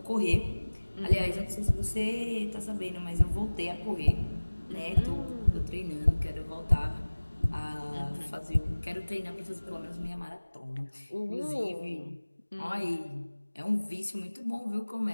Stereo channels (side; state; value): both; inverted; correlation -1.00